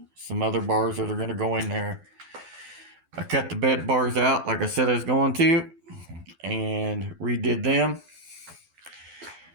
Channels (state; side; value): late; left; 12 ms